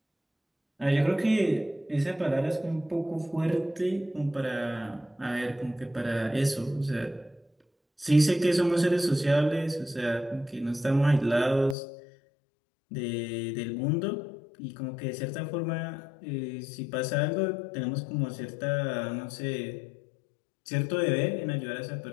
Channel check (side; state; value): right; drops out; at 11.8 s